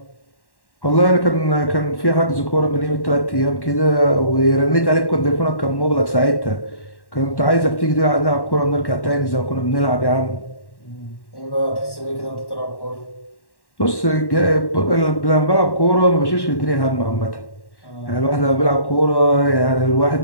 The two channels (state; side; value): late; right; 1.1 ms